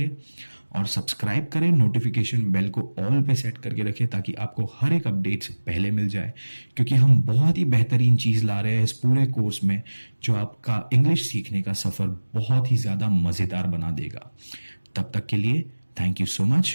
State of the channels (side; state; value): both; inverted; correlation -1.00